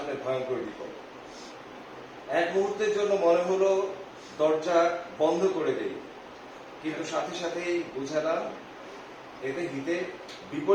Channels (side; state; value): both; identical; correlation 1.00